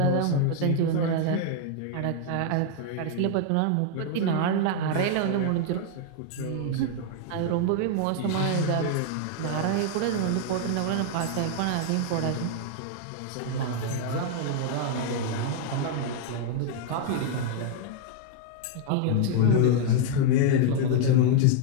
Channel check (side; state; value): both; different; correlation 0.00